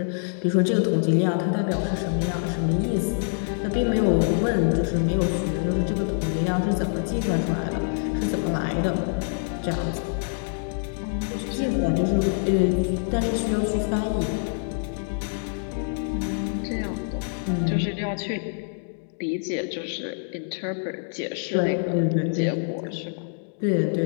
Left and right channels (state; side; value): silent; right; digital silence